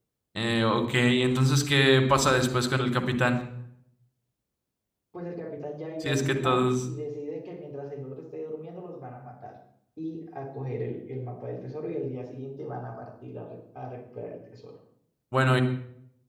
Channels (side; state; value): both; identical; correlation 1.00